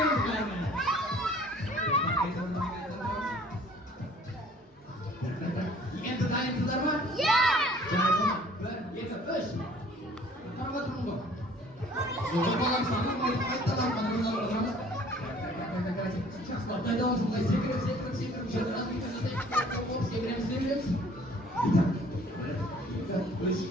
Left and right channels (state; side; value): normal; both; correlation 0.54